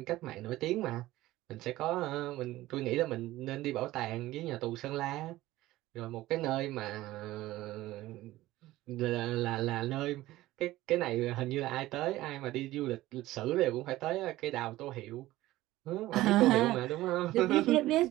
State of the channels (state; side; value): quieter; left; 16.6 dB